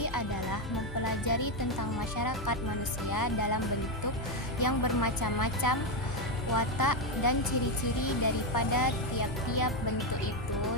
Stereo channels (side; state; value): both; normal; correlation 0.07